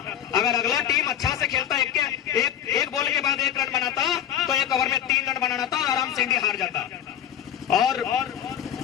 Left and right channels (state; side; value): quieter; right; 10.3 dB